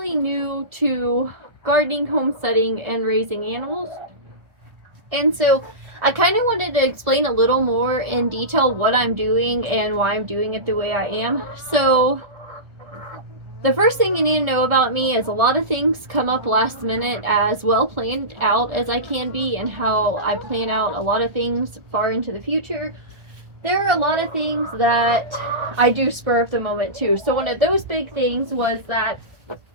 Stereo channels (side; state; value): left; late; 1.4 ms